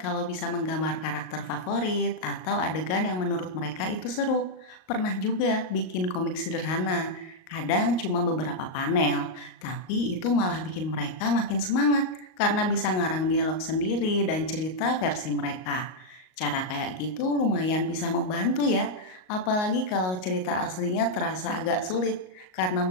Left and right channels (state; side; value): late; right; 38 ms